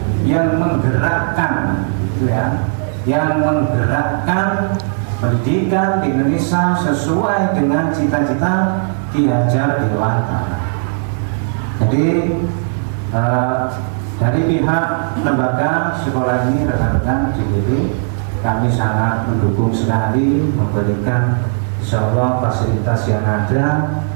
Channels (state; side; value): silent; left; 63 dB below the other